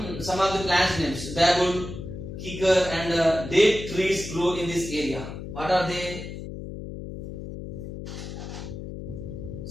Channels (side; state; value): left; noise; hum, 9 dB below the sound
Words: the plants names: babul, kikar, and date trees grow in this area. What are they?